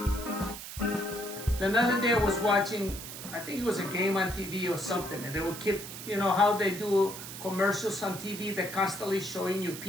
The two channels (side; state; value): right; noise; hiss, 10 dB below the sound